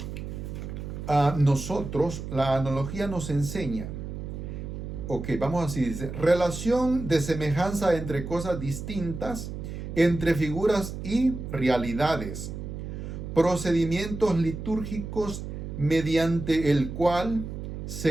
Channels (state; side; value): noise; right; hum, 7 dB below the sound